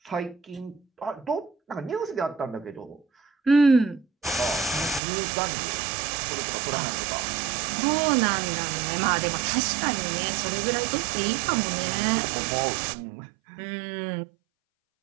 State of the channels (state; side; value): drops out; left; at 5.0 s